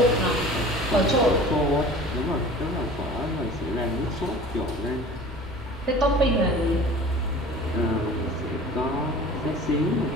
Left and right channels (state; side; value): normal; both; correlation 0.42